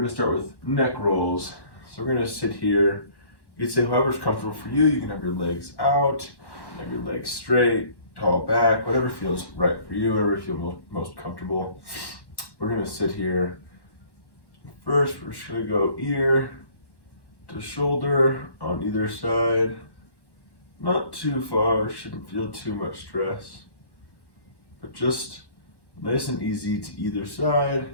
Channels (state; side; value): late; right; 1.1 ms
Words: to start with neck rolls. So we're going to sit here. You can say however's comfortable for you. You can have your legs out, have your legs straight, tall back, whatever feels right for you, whatever you feel most comfortable. We're going to sit here. First, we're just going to go ear to shoulder on either side. Not too far, shouldn't feel too much stress, but just nice and easy to either side.